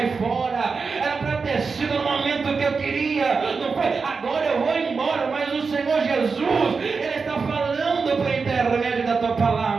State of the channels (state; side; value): quieter; left; 4.9 dB